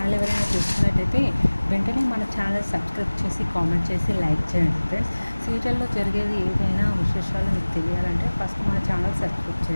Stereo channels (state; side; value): inverted; both; correlation -1.00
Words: ఎవరైనా చూస్తున్నట్టయితే వెంటనే మన ఛానల్ సబ్స్క్రైబ్ చేసి కామెంట్ చేసి లైక్ చేయండి ఫ్రెండ్స్. సీరియల్లో జరిగేది ఏదైనా విశేషాలు మీకు తెలియాలంటే ఫస్ట్ మన ఛానల్ సబ్స్క్రైబ్